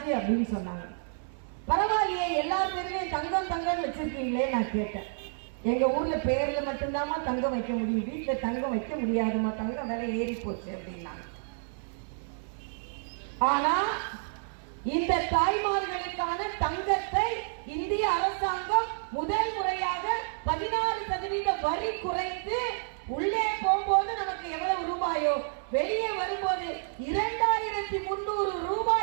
அப்படின்னு சொன்னாங்க. பரவாயில்லையே, எல்லா பேருமே தங்கம் வச்சிருக்கீங்களே நான் கேட்டேன். எங்க ஊர்ல பேர்ல மட்டும்தாமா தங்கம் வைக்க முடியும், வீட்டுல தங்கம் வைக்க முடியாதுமா, தங்கம் விலை ஏறி போச்சு அப்படின்னாங்க. ஆனா இந்த தாய்மார்களுக்கான தங்கத்தை இந்திய அரசாங்கம் முதல் முறையாக 16% வரி குறைத்து, உள்ளே போகும்போது நமக்கு எவ்வளவு ரூபாயோ, வெளியே வரும்போது 2300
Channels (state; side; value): silent; left; 58 dB below the other